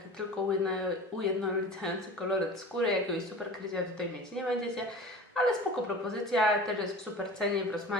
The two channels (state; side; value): normal; both; correlation 0.37